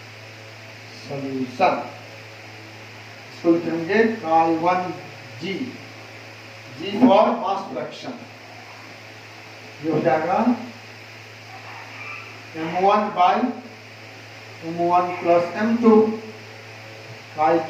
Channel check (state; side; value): identical; both; correlation 1.00